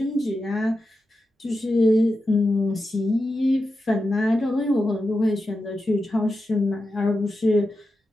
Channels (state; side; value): normal; both; correlation 0.90